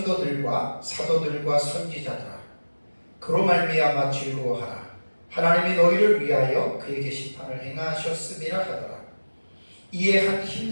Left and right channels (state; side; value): inverted; both; correlation -1.00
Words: 사도들과 선지자들아, 그로 말미암아 즐거워하라. 하나님이 너희를 위하여 그에게 심판을 행하셨음이라 하더라. 이에 한